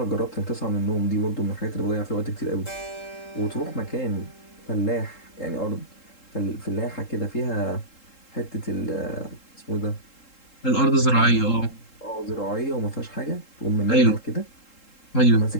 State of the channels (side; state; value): right; late; 3.7 ms